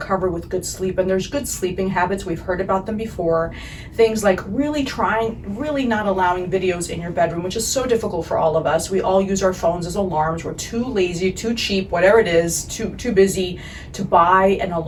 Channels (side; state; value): both; identical; correlation 1.00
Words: with good sleep. And there's good sleeping habits. We've heard about them before. Things like really not allowing videos in your bedroom, which is so difficult for all of us. We all use our phones as alarms. We're too lazy, too cheap, whatever it is, too busy to buy an